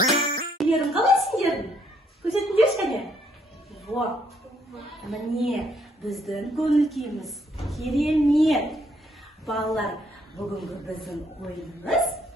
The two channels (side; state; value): both; normal; correlation 0.69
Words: қалай сендердің? Көрсетіңдерші кәне? Вот. Міне, біздің көңіл күйіміз керемет. Балалар, бүгінгі біздің